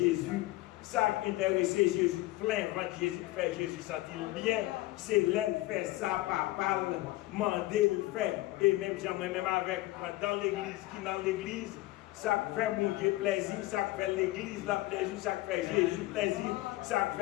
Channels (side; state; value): right; quieter; 18.3 dB